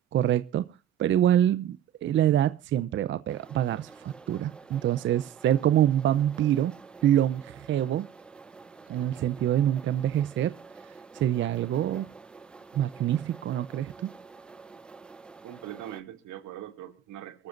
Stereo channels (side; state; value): left; quieter; 11.1 dB